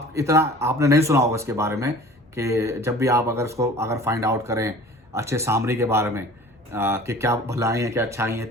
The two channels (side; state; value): both; normal; correlation 0.45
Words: नहीं सुना होगा इसके बारे में, कि जब भी आप अगर फाइंड आउट करें अच्छे सामरी के बारे में, कि क्या भलाई है क्या अच्छाई है,